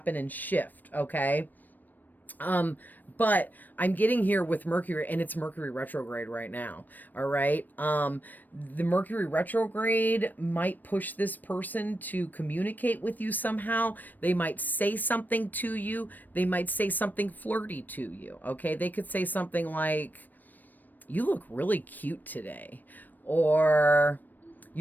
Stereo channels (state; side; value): late; right; 0.088 ms